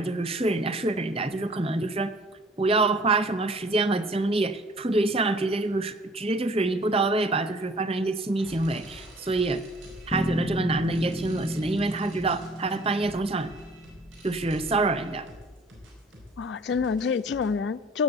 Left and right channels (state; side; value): normal; both; correlation 0.53